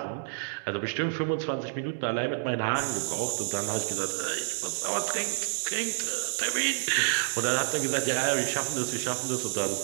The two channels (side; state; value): left; silent; digital silence